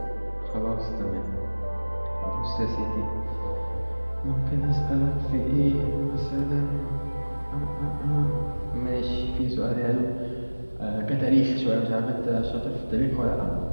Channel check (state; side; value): inverted; both; correlation -1.00